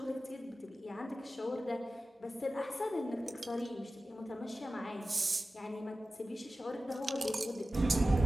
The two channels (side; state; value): both; normal; correlation 0.95